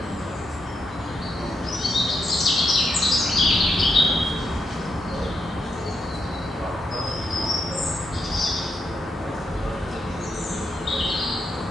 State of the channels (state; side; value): normal; both; correlation 0.83